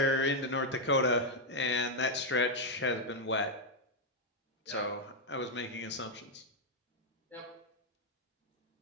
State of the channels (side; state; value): both; normal; correlation 0.00